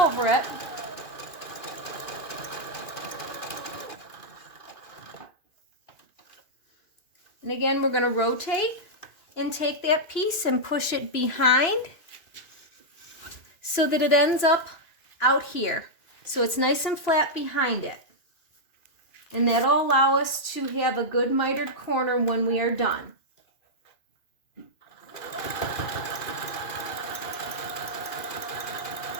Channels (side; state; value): right; late; 2.5 ms